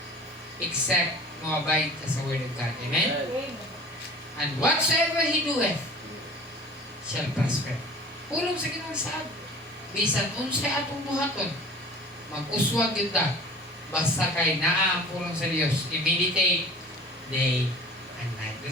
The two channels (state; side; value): normal; both; correlation 0.43